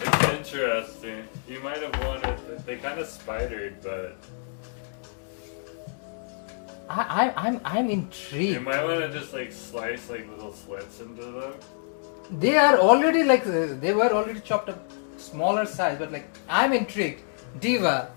It's interesting. You might have wanted, they kind of spidered, but I'm you intrigued. might want to just like slice like little slits into them. They are already like they were already chopped up smaller size, but like I'm intrigued. Diva,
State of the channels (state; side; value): silent; right; digital silence